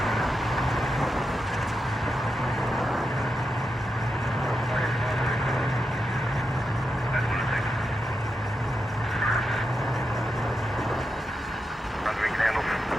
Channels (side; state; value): both; normal; correlation 0.87